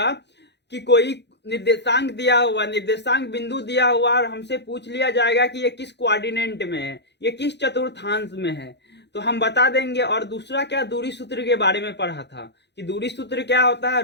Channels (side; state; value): right; late; 0.50 ms